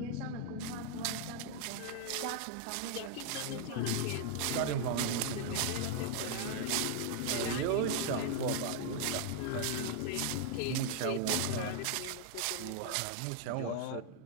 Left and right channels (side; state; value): both; different; correlation 0.00